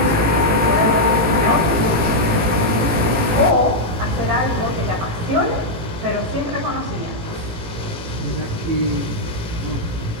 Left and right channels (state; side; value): late; left; 18 ms